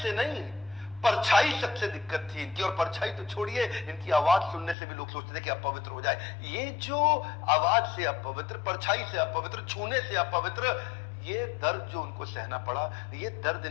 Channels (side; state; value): right; drops out; at 4.8 s